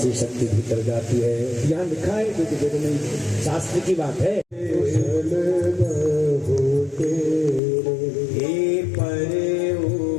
शक्ति भीतर जाती है, यहाँ लिखा है क्योंकि नहीं, शास्त्र की बात है।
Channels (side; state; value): right; drops out; at 7.6 s